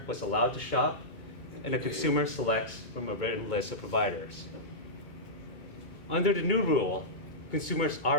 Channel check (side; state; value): right; late; 2.2 ms